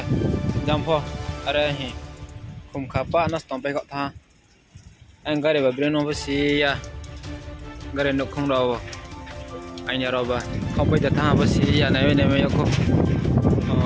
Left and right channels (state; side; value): identical; both; correlation 1.00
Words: jampo are hi kum khapa nas tompe ko tha ang gare ba breno basi ya gare no khong ro anya ro ba không bây giờ tha basi ya này me ko